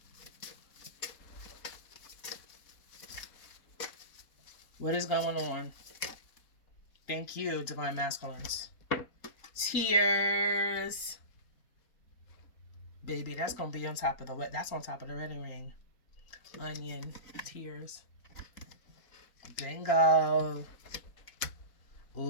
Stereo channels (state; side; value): late; right; 4.2 ms